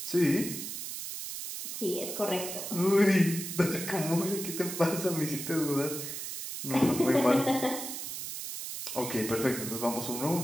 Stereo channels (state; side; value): noise; right; hiss, 7 dB below the sound